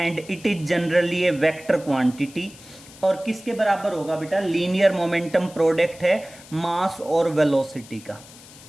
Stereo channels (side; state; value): left; noise; hiss, 20 dB below the sound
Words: it is generally A vector quantity. और किसके बराबर होगा बेटा, लीनियर मोमेंटम प्रोडक्ट है मास और वेलोसिटी का।